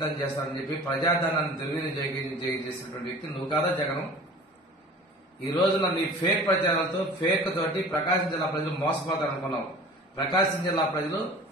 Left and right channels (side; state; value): both; normal; correlation 0.43